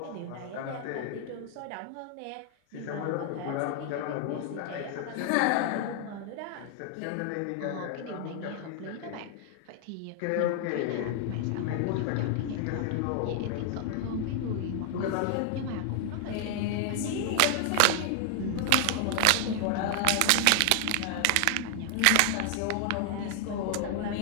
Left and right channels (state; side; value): different; both; correlation 0.00